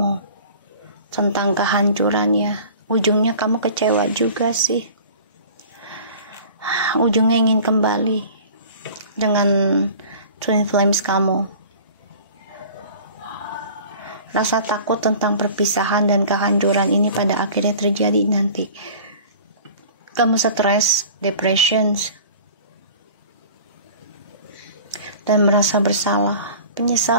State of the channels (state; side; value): inverted; both; correlation -0.43